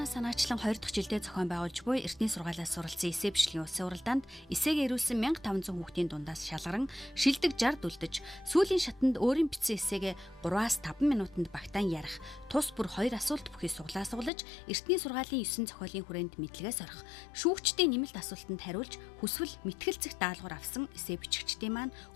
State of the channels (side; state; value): right; drops out; at 14.3 s